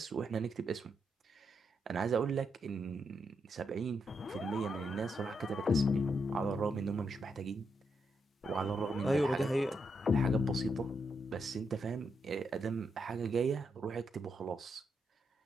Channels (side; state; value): both; normal; correlation 0.81